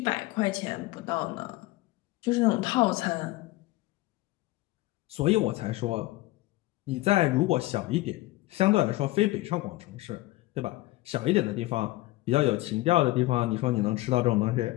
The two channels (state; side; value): quieter; right; 18.8 dB